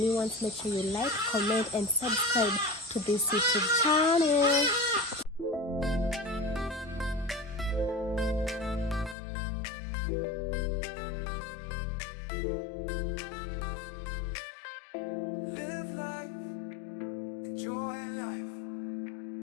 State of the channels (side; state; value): right; drops out; at 9.2 s